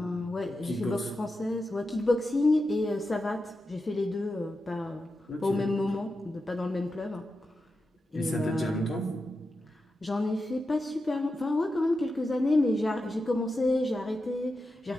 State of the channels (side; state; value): both; normal; correlation 0.90